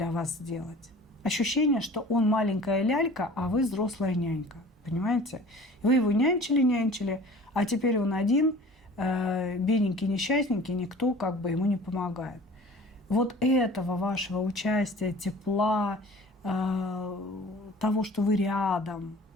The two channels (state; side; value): normal; both; correlation 0.45